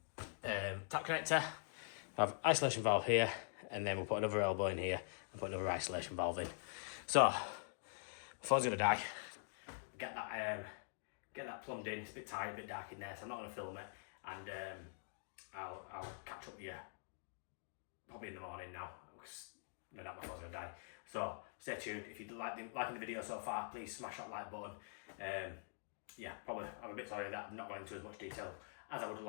tap connector. Have isolation valve here, and then we'll put another elbow in here and put another isolation valve in. So before I was gonna die, get that plumbed in. It's a bit tight, a bit dark in there, so I'm not gonna film it, and I'll catch up with you probably in the morning now, because before I was gonna die. So stay tuned. If you liking the video so far, please smash that like button. Yeah, probably I'm a bit sorry that I'm not going into as much detail as I would have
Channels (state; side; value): silent; right; digital silence